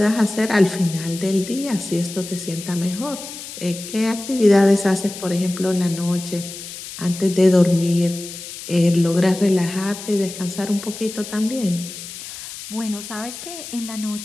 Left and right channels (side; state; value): left; noise; hiss, 11 dB below the sound